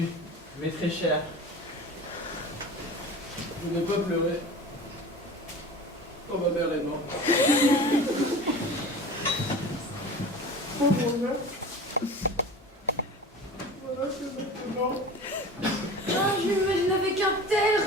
mais très cher. Je n'ai pas pleuré. Oh, ma mère est morte. Oh mon Dieu. Voilà que maintenant. Ah, je m'imagine avec un tel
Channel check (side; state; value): both; normal; correlation 0.36